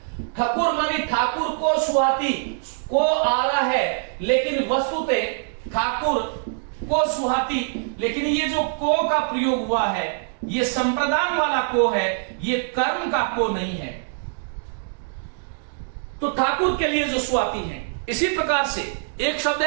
ठकुर मानी ठाकुर को, सुहाती को आ रहा है, लेकिन वस्तुतः ठाकुर को सुहाती, लेकिन ये जो को का प्रयोग हुआ है ये संप्रदान वाला को है, ये कर्म का को नहीं है। तो ठाकुर के लिए जो सुहाती है। इसी प्रकार से एक शब्द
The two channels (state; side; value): silent; left; digital silence